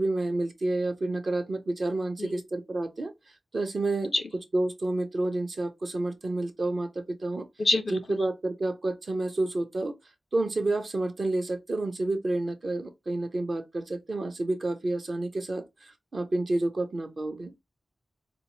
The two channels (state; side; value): normal; both; correlation 0.96